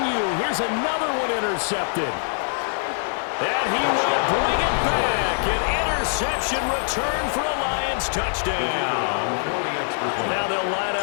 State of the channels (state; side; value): silent; right; 63 dB below the other